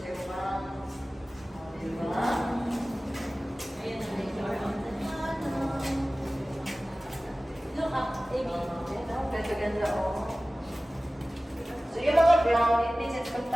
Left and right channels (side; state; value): both; normal; correlation 0.97